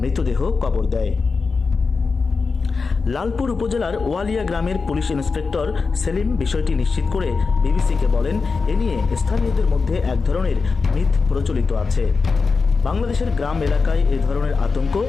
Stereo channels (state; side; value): quieter; right; 4.6 dB